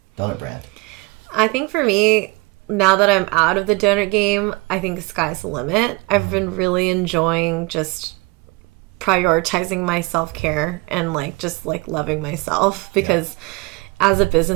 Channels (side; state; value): left; quieter; 25.5 dB